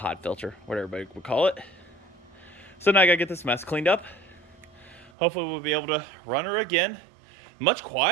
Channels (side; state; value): left; drops out; at 5.1 s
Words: filter, whatever everybody would call it. So now I gotta get this mess cleaned up. Hopefully we'll be able to run her again. Much